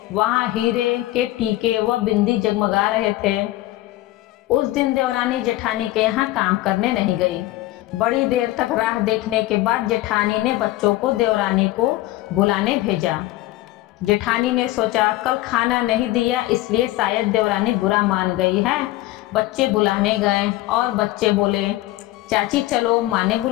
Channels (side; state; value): right; quieter; 16.9 dB